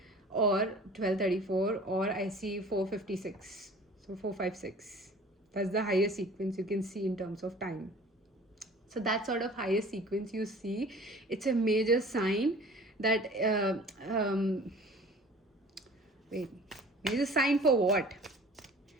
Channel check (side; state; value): both; normal; correlation 0.46